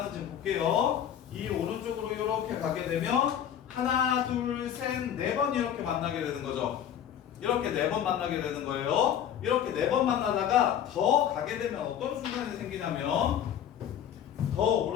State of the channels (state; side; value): quieter; right; 9.7 dB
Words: 볼게요. 이 오른쪽으로 이렇게 가게 되면 하나, 둘, 셋, 4번 이렇게 만나게 되는 거죠. 이렇게 4번 만나게 되는 거예요. 이렇게 4번 만나다가 더 가게 되면 어떤 순간이 생기냐면, 더